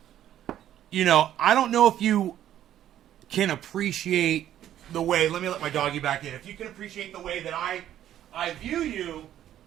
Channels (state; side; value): quieter; left; 11.6 dB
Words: I don't know if you can appreciate the way. Let me let my doggy back in. If you can appreciate the way that I view you,